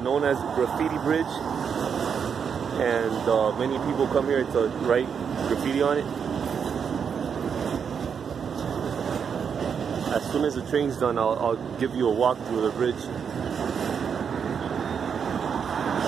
as Graffiti Bridge, and many people come here to write graffiti on it. As soon as the train's done, I'll give you a walk through the bridge.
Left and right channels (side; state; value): left; quieter; 6.9 dB